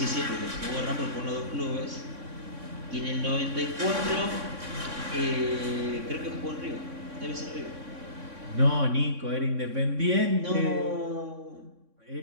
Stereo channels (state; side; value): late; left; 3.6 ms